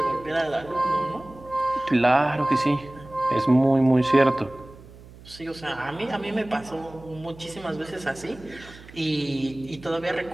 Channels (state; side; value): noise; right; hum, 20 dB below the sound